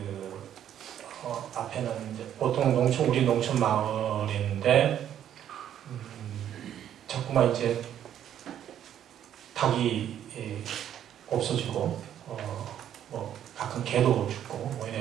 앞에는 이제 보통 우리 농촌 마을인데 자꾸만 이제 닭이 없어지고 뭐 가끔 개도 죽고 뭐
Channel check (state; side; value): quieter; left; 10.4 dB